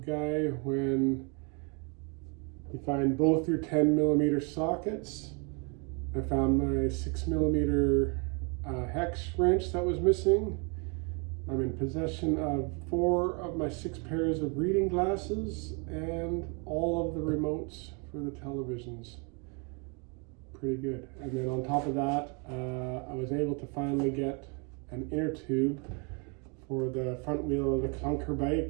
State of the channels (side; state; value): left; quieter; 34.3 dB